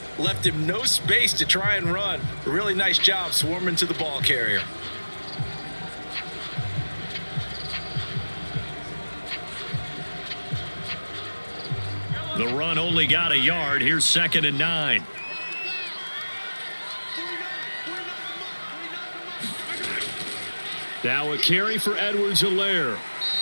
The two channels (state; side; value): inverted; both; correlation -1.00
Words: left him no space to try and run. A really nice job swarming to the ball carrier. The run only got a yard. Here's 2nd and 9. Now a carry for Edwards-Helaire.